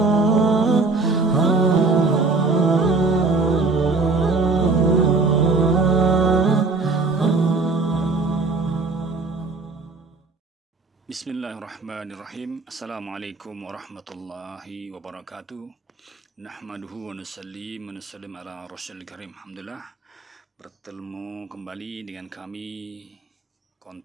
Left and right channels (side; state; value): left; quieter; 3.8 dB